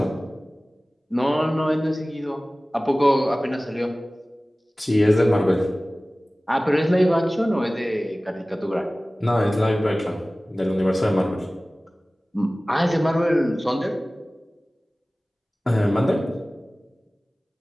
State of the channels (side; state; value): both; normal; correlation 0.98